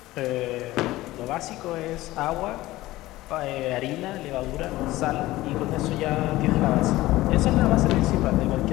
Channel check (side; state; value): right; quieter; 17.4 dB